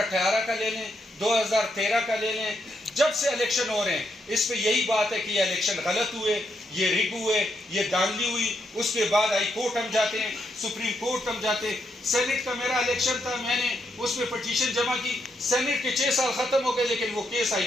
کا لے لیں، 2013 کا لے لیں، جب سے الیکشن ہو رہے ہیں اس پہ یہی بات ہے کہ یہ الیکشن غلط ہوئے، یہ رگ ہوئے، یہ دھاندلی ہوئی. اس کے بعد ہائی کورٹ ہم جاتے ہیں، سپریم کورٹ ہم جاتے ہیں. سینٹ کا میرا الیکشن تھا، میں نے اس میں پٹیشن جمع کی، سینٹ کے 6 سال ختم ہو گئے لیکن وہ کیس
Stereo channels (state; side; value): normal; both; correlation 0.80